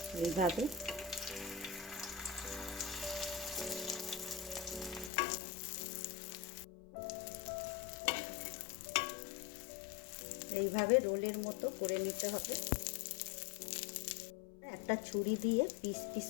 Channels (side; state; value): right; drops out; at 5.1 s